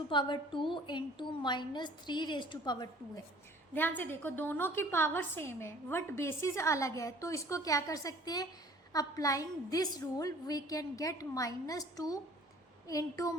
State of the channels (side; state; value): both; normal; correlation 0.52